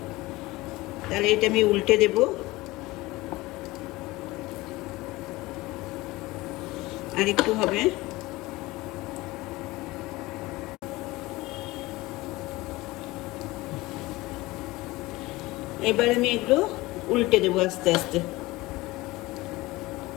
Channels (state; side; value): quieter; right; 20.1 dB